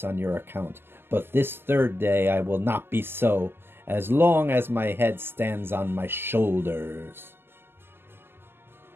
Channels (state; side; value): late; left; 0.11 ms